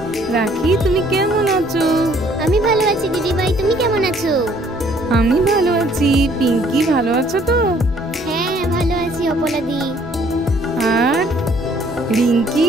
রাখি, তুমি কেমন আছো? আমি ভালো আছি দিদিভাই, তুমি কেমন আছো? আমি ভালো আছি। পিঙ্কি ভালো আছো তো? হ্যাঁ ভালো আছি অপলাদি। আর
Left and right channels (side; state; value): both; normal; correlation 0.61